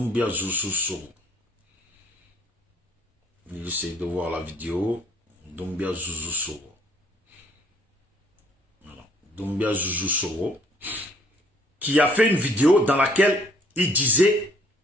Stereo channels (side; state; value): both; normal; correlation 0.62